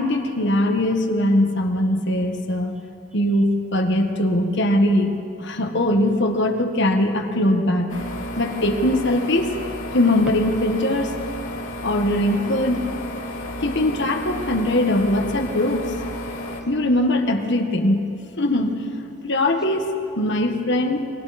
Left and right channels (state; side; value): normal; both; correlation 0.48